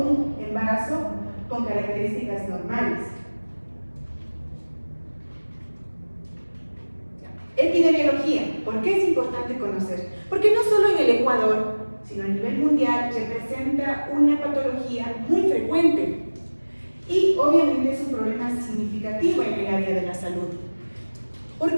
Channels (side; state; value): both; inverted; correlation -1.00